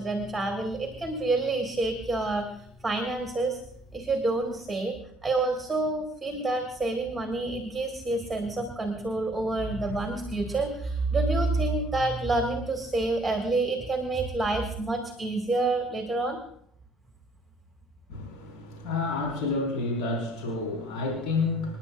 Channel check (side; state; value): both; normal; correlation 0.60